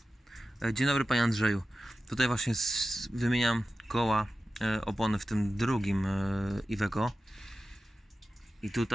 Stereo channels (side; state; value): both; normal; correlation 0.94